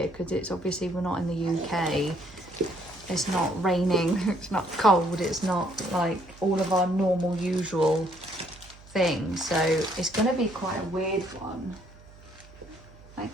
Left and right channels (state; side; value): noise; right; hum, 22 dB below the sound